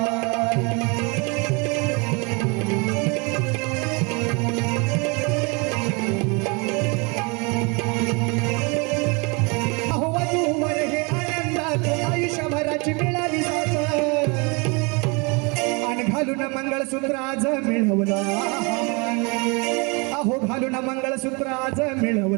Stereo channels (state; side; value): quieter; left; 30.1 dB